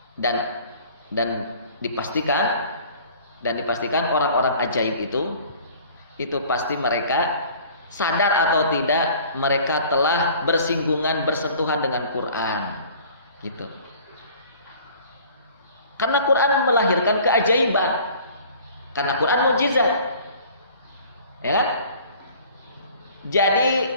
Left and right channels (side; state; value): both; inverted; correlation -0.49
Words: Dan dipastikan orang-orang ajaib itu pasti mereka sadar atau tidak mereka telah bersentuhan dengan Quran, gitu. Karena Quran melahirkan keajaiban, karena Quran mukjizat, ya kan? Jadi